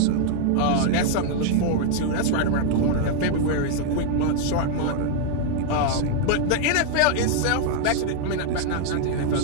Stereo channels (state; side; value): different; both; correlation 0.00